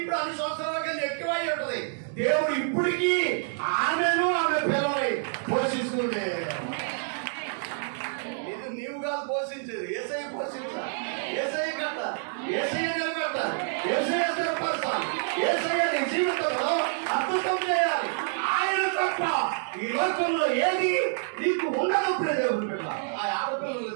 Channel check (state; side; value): silent; left; digital silence